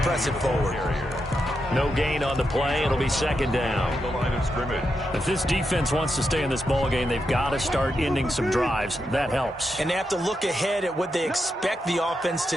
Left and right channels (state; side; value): normal; both; correlation 0.85